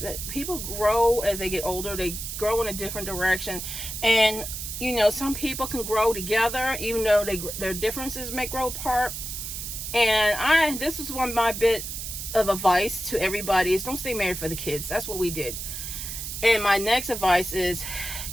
that people grow as they get older. They grow in a different direction, and some people can grow together, even though their differences may grow apart. And this is one of my bit of advice to everybody is, don't stay married for the kids. That's what we did. And my next advice is,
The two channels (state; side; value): noise; right; hiss, 6 dB below the sound